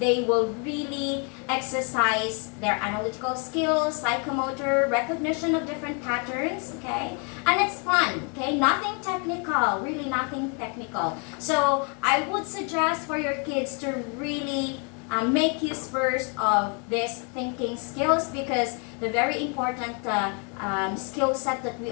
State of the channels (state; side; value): quieter; right; 36.3 dB